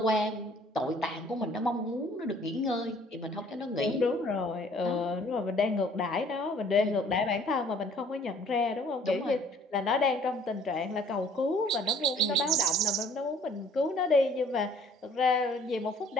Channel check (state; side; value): normal; both; correlation 0.56